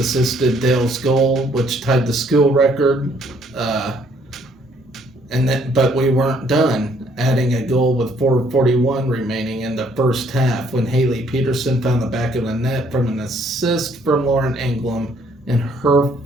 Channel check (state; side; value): normal; both; correlation 0.65